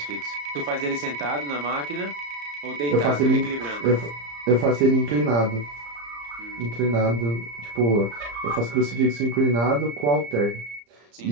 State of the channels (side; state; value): left; late; 34 ms